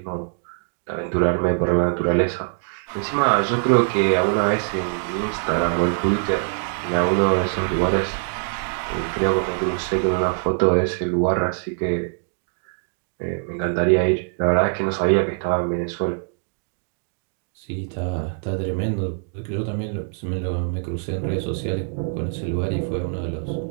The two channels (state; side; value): silent; left; 63 dB below the other